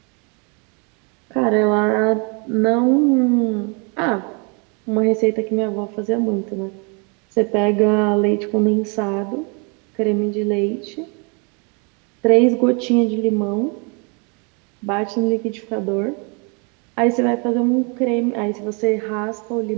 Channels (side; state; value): left; quieter; 34.3 dB